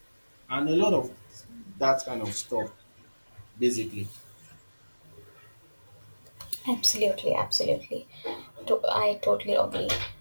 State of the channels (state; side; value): inverted; both; correlation -1.00